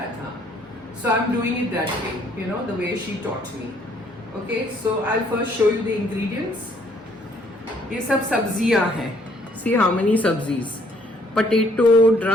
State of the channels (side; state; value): both; normal; correlation 0.64